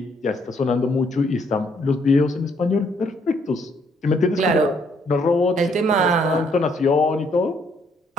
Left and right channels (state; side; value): normal; both; correlation 0.69